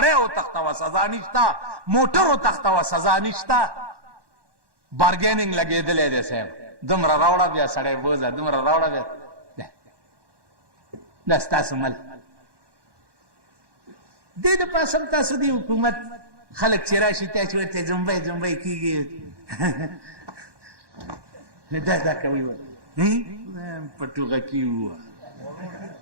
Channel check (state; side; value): late; left; 1.1 ms